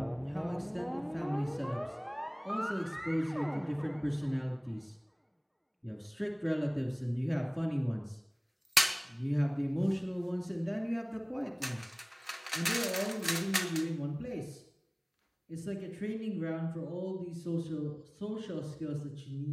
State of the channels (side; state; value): both; identical; correlation 1.00